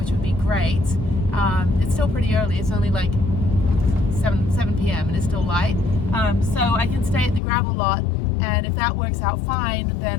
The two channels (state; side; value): drops out; right; at 7.4 s